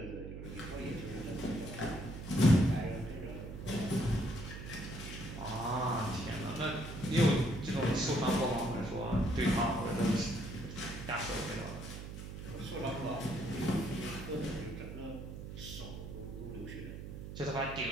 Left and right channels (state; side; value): noise; right; hum, 9 dB below the sound